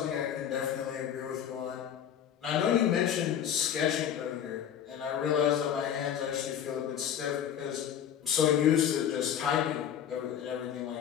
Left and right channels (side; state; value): right; quieter; 9.3 dB